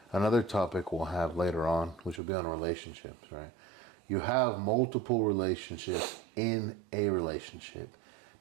another topic we'll have later on, which will be on relationships, right? You have multiple relationships in a relationship.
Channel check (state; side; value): drops out; left; at 2.2 s